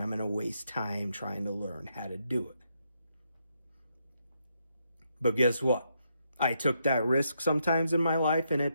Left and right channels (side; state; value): both; inverted; correlation -0.79